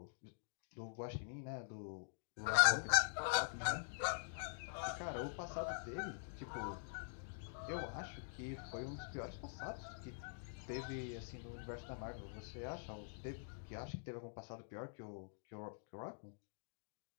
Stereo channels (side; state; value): right; silent; digital silence